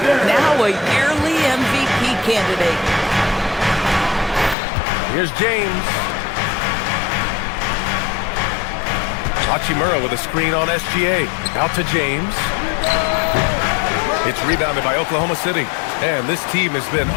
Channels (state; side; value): drops out; right; at 4.5 s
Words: now a yearly MVP candidate. Here's James. Hachimura with a screen on SGA. Out to James. It's rebounded by Oklahoma City. And this team has been